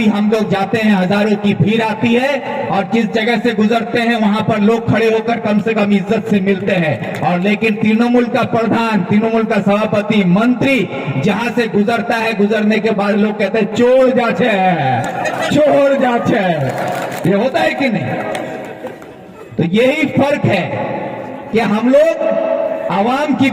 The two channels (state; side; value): identical; both; correlation 1.00